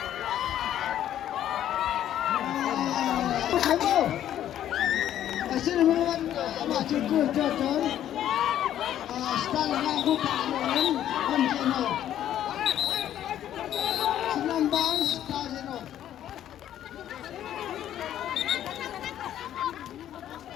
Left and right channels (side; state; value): right; quieter; 11.3 dB